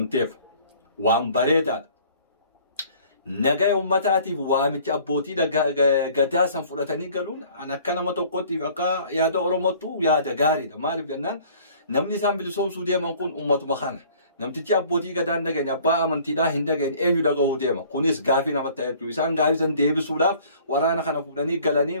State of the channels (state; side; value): inverted; both; correlation -0.53